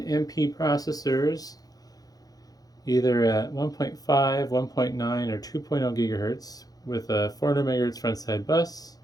MP processors, either at 1.5, 1.9, or 2.0 gigahertz with a 400 megahertz frontside bus.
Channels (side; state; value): right; late; 0.18 ms